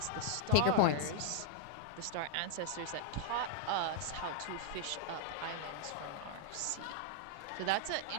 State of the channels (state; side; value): different; both; correlation 0.00